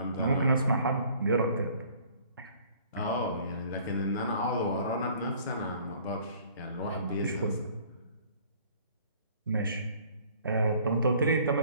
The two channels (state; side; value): inverted; both; correlation -0.55